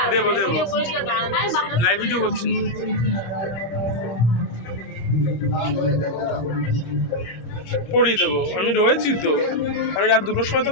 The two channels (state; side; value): late; right; 26 ms